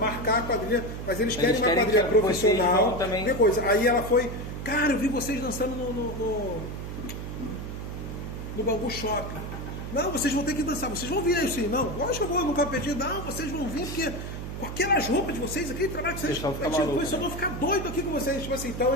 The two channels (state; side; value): noise; right; hum, 7 dB below the sound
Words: a quadrilha, mas eles querem uma quadrilha profissional. Coisa. Aí ela foi, cara, eu vi vocês dançando no Bangu Shopping. Não, vocês vão ter que dançar, vocês vão vir aí sim. Não, lógico que eu vou, nunca pedi, não, vocês vão vir, porque com aquelas roupas de vocês, aquele trabalho que vocês eu vou ficar doido aqui com vocês. Tipo assim, então